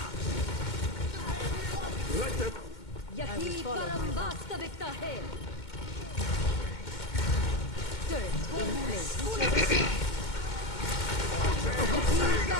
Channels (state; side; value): late; right; 2.2 ms